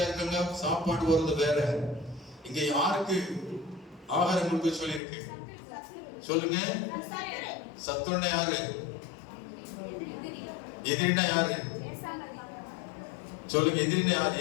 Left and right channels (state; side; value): drops out; right; at 5.0 s